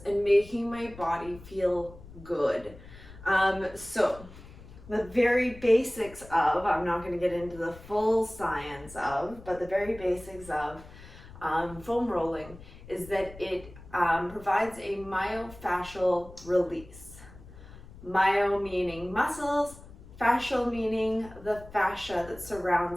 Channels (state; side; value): noise; left; rumble, 18 dB below the sound